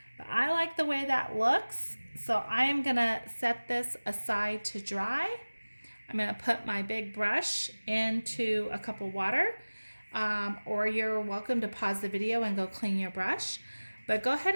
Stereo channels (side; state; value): both; inverted; correlation -1.00